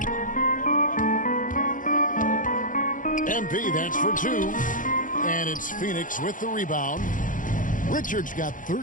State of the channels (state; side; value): late; right; 0.38 ms